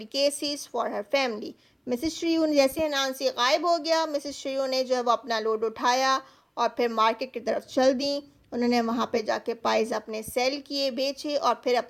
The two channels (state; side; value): identical; both; correlation 1.00